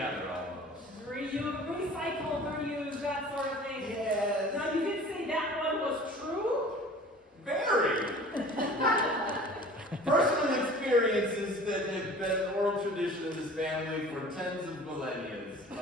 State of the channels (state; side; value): normal; both; correlation 0.44